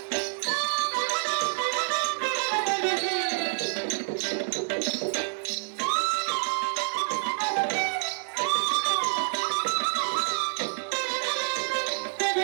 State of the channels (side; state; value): left; silent; 60 dB below the other